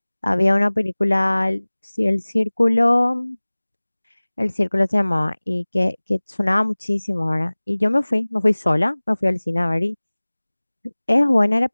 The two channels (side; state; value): both; inverted; correlation -1.00